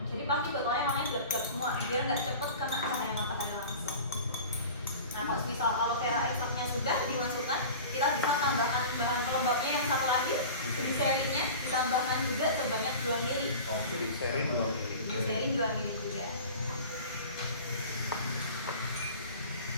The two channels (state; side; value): inverted; both; correlation -0.37